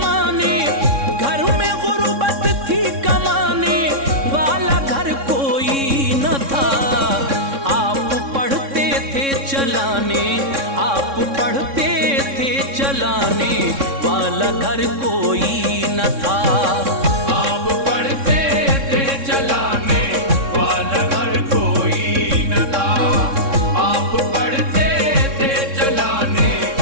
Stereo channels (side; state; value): left; late; 3.6 ms